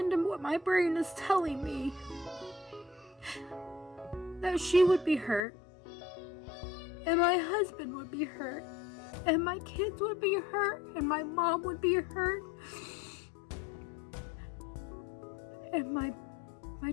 to what my brain is telling me, that she would be hurt, and my husband would be hurt, and my kids would be hurt, and my mom would be hurt, and my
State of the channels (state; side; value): drops out; right; at 5.5 s